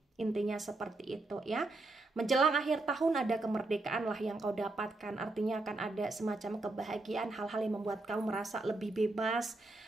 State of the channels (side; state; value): left; quieter; 3.1 dB